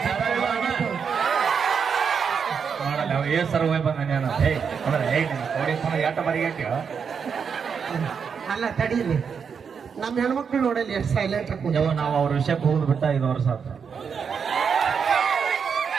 ಮಾಡಲ್ಲ. ಅವ ಏ ಸರ್ ಹೋಯ್ ಬಂದ ಎಟ್ಟ ಬರಿಗಟ್ಟಿ. ಅಲ್ಲ ತಡೀಲಿ ನಮ್ಮ ಹೆಣ್ಮಕ್ಳು ನೋಡಲಿ ಎಷ್ಟು ಸೈಲೆಂಟ್ ನಾವು ಅವ್ರ ವಿಷಯಕ್ಕೆ ಹೋಗುದು ಬಿಟ್ಟ 5 ವರ್ಷ ಆತ.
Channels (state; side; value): quieter; left; 6.5 dB